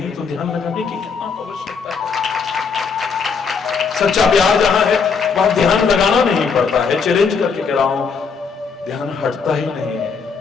तो ध्यान लगाने की कितना आवश्यकता है। सच्चा प्यार जहां है वहां ध्यान लगाना नहीं पड़ता है। चैलेंज करके कह रहा हूं, ध्यान हटता ही नहीं है।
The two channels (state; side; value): quieter; right; 5.4 dB